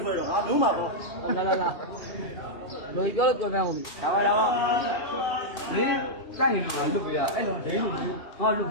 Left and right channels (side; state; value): right; late; 2.4 ms